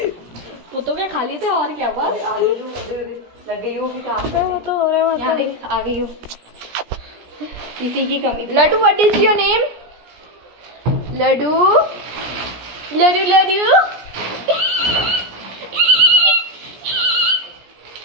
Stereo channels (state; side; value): late; left; 17 ms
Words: वो तो क्या खा लिए थे, और क्या बस लग गई होगी काम। वो तो हो रहा है। यहाँ देख आ गई हूँ, इसी की कमी थी। Laddu, what is your name? Laddu Laddu Laddu